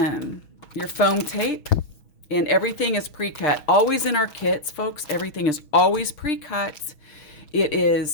your foam tape, and everything is pre-cut. Always in our kits, folks, everything is always pre-cut. It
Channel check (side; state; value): right; late; 6.2 ms